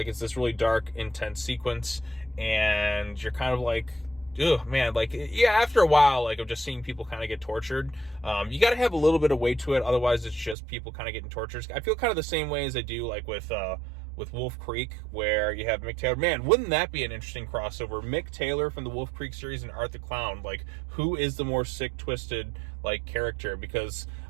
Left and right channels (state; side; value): drops out; left; at 10.6 s